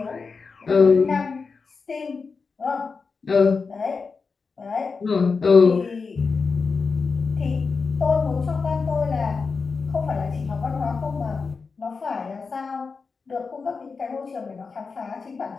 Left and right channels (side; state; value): right; quieter; 4.8 dB